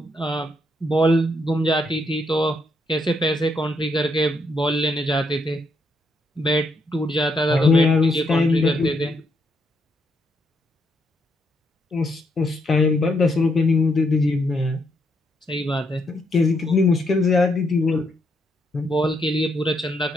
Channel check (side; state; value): both; normal; correlation 0.77